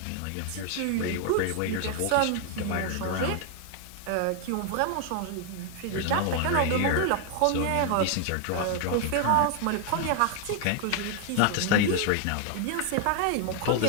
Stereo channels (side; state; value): both; different; correlation 0.00